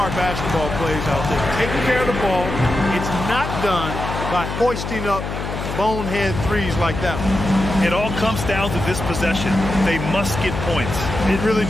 basketball plays out there. Taking care of the ball. It's not done by hoisting up bonehead threes like that one. It all comes down to this possession. They must get points. It really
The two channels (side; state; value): left; noise; hum, 6 dB below the sound